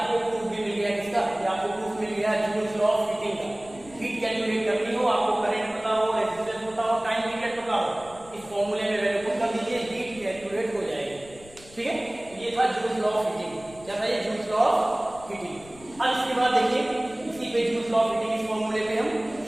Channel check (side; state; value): left; noise; rumble, 22 dB below the sound